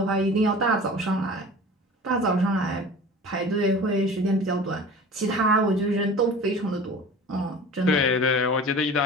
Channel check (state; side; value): normal; both; correlation 0.39